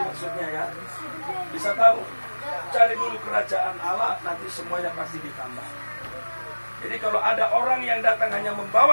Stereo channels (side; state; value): both; inverted; correlation -1.00